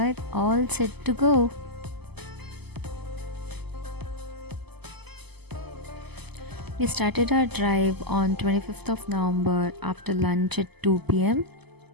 all set to go. We started our drive on 25th of November after lunch at 2 p.m.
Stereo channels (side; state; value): left; late; 0.99 ms